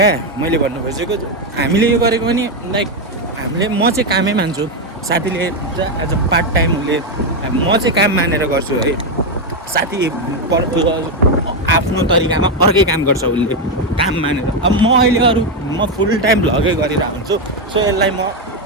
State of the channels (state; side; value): normal; both; correlation 0.06